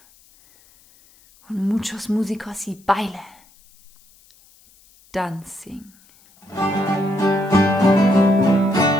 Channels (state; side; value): noise; left; hiss, 29 dB below the sound